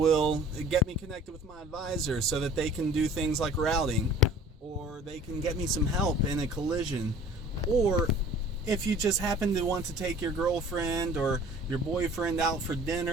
get me connected with my advisor so that they can do things like routing, or they can get me some help in a collision. Or if you just happen to want to take your girlfriend or your boyfriend out for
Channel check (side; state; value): both; normal; correlation 0.48